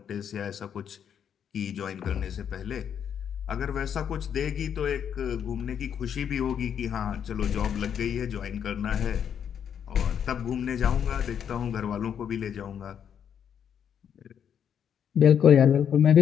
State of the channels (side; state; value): right; quieter; 8.4 dB